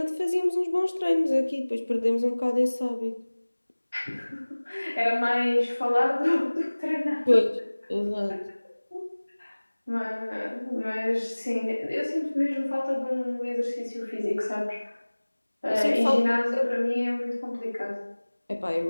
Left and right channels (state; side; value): inverted; both; correlation -1.00